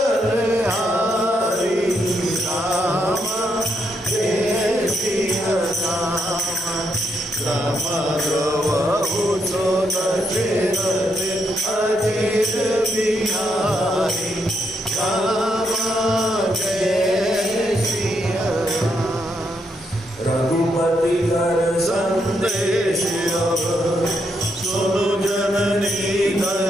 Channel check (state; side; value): normal; both; correlation 0.78